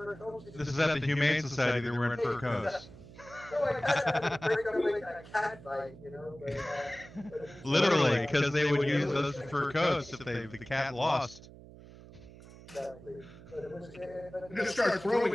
coats? This is at the Humane Society. They were wearing fur coats. So I kind of break up like a cat fight, you know. But literally, because they would use those fur coats if the cat lost. Exactly. But it was, You're gonna start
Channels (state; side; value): noise; right; hum, 18 dB below the sound